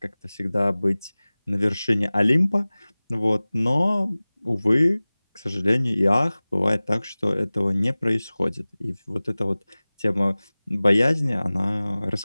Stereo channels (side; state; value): both; inverted; correlation -0.99